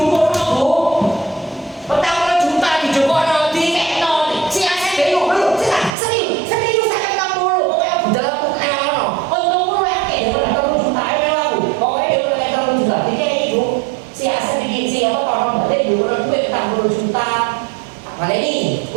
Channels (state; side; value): drops out; left; at 5.9 s